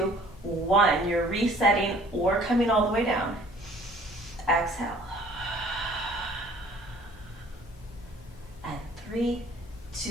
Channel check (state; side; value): normal; both; correlation 0.53